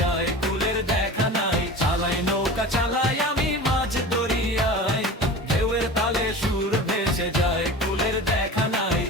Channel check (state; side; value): normal; both; correlation 0.34